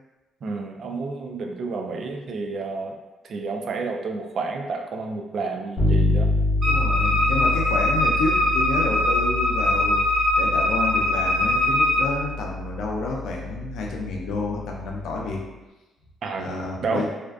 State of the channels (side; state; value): both; normal; correlation 0.69